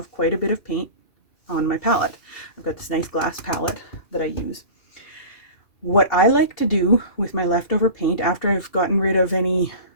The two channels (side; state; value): right; late; 2.5 ms